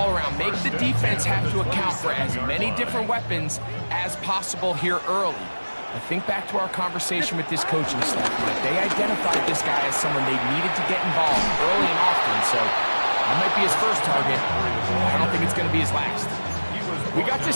around. Make the defense have to account for as many different weapons as possible here early. I think back to our conversation with this coaching staff, that they identified this guy as someone they needed to get involved early and often, so that might be his first target. I don't think it's going to be his last. We got to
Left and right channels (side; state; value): both; inverted; correlation -1.00